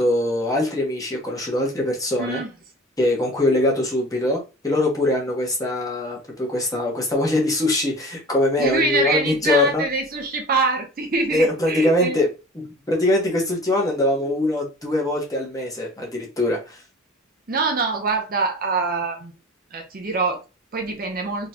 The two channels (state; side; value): normal; both; correlation 0.41